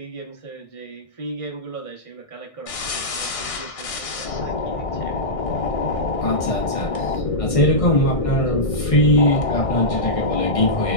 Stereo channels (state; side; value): late; right; 1.6 ms